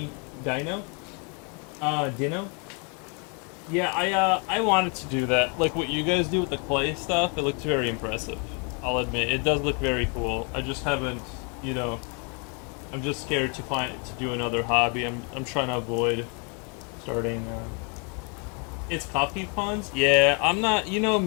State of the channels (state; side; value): quieter; right; 35.9 dB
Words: Dino? Yeah, I wanted to do that. Like what you guys do with the clay stuff, it looks very impressive. I'll admit, it does look very cool. I just haven't, you know, I'm just scared to do another hobby. I'm trying to avoid starting, It's coffee puns? Yeah, I'm not, you know